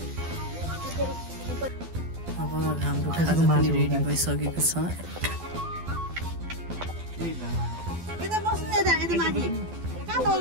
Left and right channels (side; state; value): left; late; 12 ms